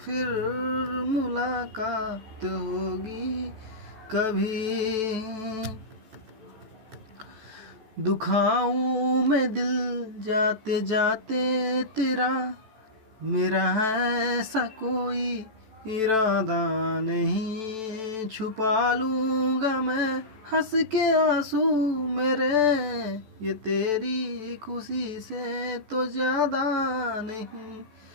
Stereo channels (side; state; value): left; late; 14 ms